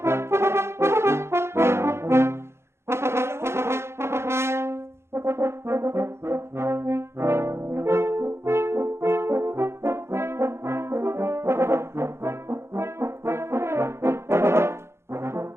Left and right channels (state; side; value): late; left; 0.13 ms